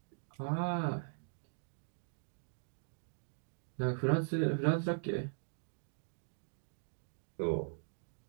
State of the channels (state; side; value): silent; left; digital silence